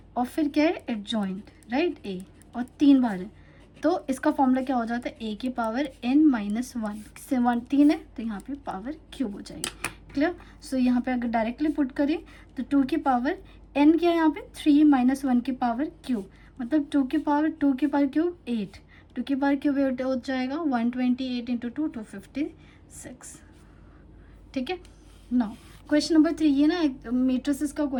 और फिर क्या है एडजॉइंट, राइट, ए, और 3 बार है, तो इसका फॉर्मूला क्या हो जाता है, a की पावर n - 1 से 1 3 है, तो यहाँ पे पावर क्यूब हो जाएगी, क्लियर। सो यहाँ पे अगर डायरेक्टली पुट करें तो 2 की पावर n क्या है यहाँ पे 3 माइनस 1 की पावर क्यूब, मतलब 2 की पावर क्यूब 8, 2 की पावर क्यूब 8 हो जाएगा 128 इंटू 2 256। ठीक है। नाउ क्वेश्चन नंबर 3, ये ना मैट्रिसेस का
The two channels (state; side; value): identical; both; correlation 1.00